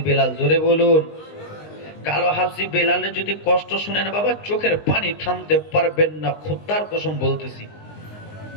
বেলাল। জোরে বলুন। কালো হাফসি বেলালের যদি কষ্ট শুনেন বাবা, চোখের পানি থামতে পারবেন না, খোদার কসম বলতেছি।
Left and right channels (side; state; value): right; late; 19 ms